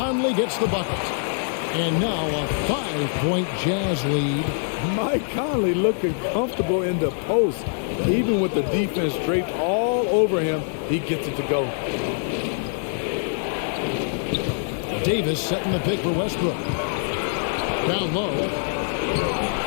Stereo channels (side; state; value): right; silent; 58 dB below the other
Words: gets the bucket. And now a 5-point Jazz lead. Mike Conley looking comfortable in the post. Even with the defense draped all over him, he gets it to go. Davis setting the pick for Westbrook. Down low.